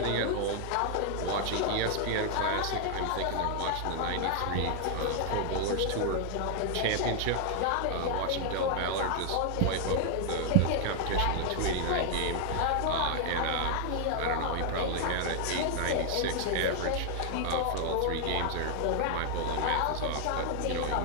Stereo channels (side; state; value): both; different; correlation 0.00